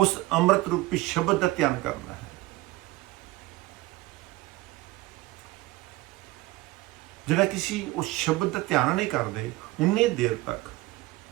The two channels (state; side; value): quieter; left; 19.3 dB